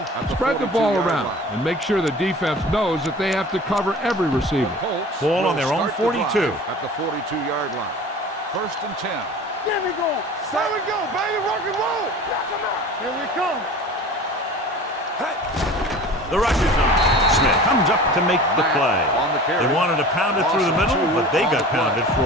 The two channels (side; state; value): both; normal; correlation 0.40